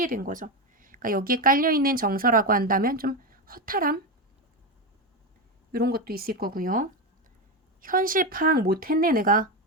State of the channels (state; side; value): normal; both; correlation 0.14